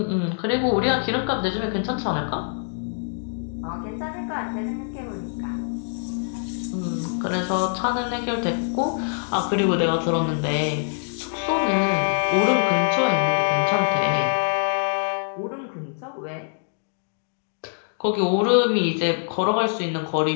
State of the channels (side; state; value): right; silent; digital silence